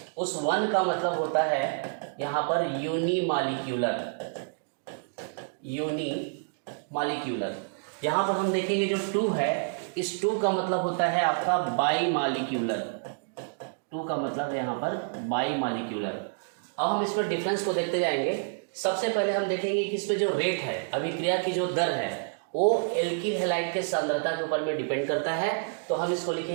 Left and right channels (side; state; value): left; silent; digital silence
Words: उस 1 का मतलब होता है यहाँ पर यूनिमॉलिक्यूलर। यहाँ पर हम देखेंगे जो 2 है, इस 2 का मतलब होता है आपका बाईमॉलिक्यूलर। 2 का मतलब है यहाँ पर बाईमॉलिक्यूलर। अब हम इसमें डिफरेंस को देखते जाएंगे। सबसे पहले हम देखेंगे कि इसमें जो रेट है, अभिक्रिया की जो दर है, वो एल्किल हैलाइड के सांद्रता के ऊपर में डिपेंड करता है। तो हम इसको